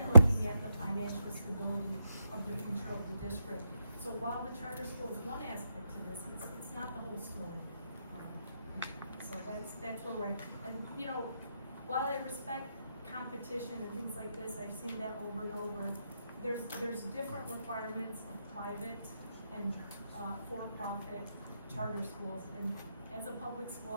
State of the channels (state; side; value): inverted; both; correlation -0.82